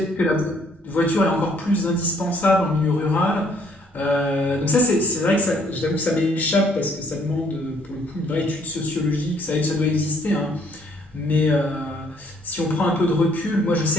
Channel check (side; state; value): both; normal; correlation 0.65